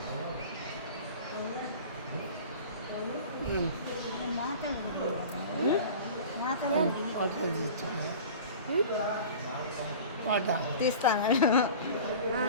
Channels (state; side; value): inverted; both; correlation -0.39